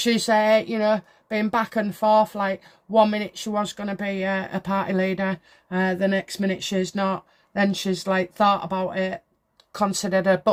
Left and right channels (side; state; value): both; identical; correlation 1.00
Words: you know, been back and forth. Like, 1 minute she was going to be a party leader. The next minute she's not. Then she's, like, thought about it, considered a